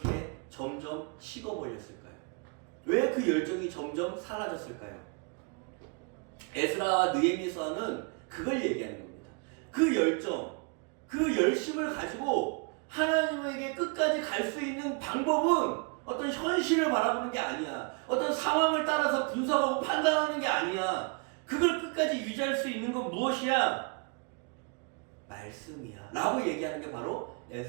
점점 식어버렸을까요? 왜 그 열정이 점점 사라졌을까요? 에스라와 느헤미야서는 그걸 얘기하는 겁니다. 그 열정, 그 열심을 가지고 하나님에게 끝까지 갈 수 있는 방법은 어떤 현실을 바라보는 게 아니야. 어떤 상황을 따라서 분석하고 판단하는 게 아니야. 그걸 끝까지 유지할 수 있는 건 무엇이야? 말씀이야. 라고 얘기하는 게 바로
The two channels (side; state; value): left; quieter; 34.7 dB